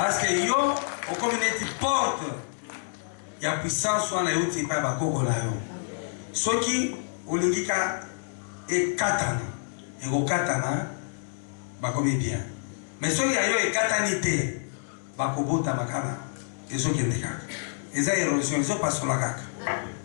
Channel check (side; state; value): right; silent; digital silence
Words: que yo, au communauté porte, il y a puissance sur la route, il n'y a pas de ce qui, au lingika, et katana et au katana bakomi bien mais ceux qui ayo et katanité bakobota makana et ceux qui ndeka et ça érosion ils sont pas sur la kaka